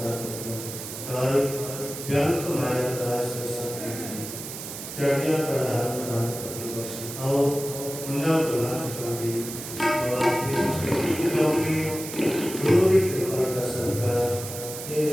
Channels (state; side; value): noise; right; hiss, 9 dB below the sound